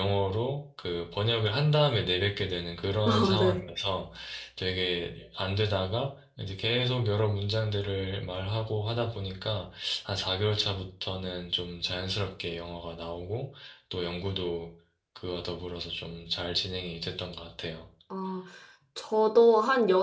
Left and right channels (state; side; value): identical; both; correlation 1.00